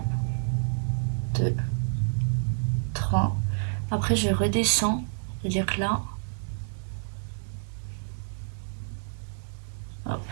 2, 3. Après je redescends, c'est-à-dire que là, hop,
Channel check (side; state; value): left; silent; digital silence